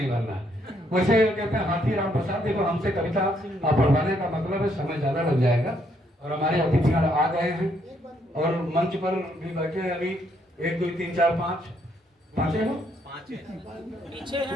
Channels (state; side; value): normal; both; correlation 0.72